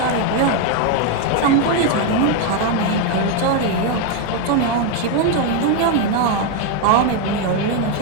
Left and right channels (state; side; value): different; both; correlation 0.01